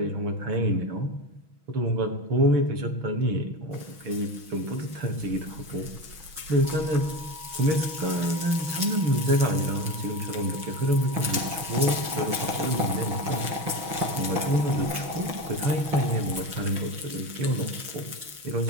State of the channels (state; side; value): late; left; 6.3 ms